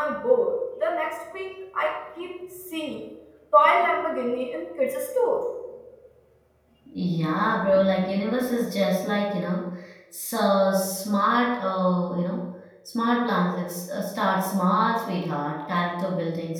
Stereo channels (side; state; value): both; identical; correlation 1.00